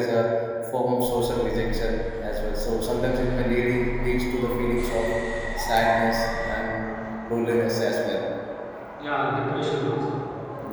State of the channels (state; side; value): identical; both; correlation 1.00